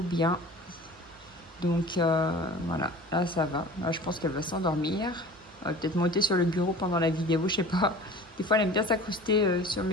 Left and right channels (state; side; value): normal; both; correlation 0.42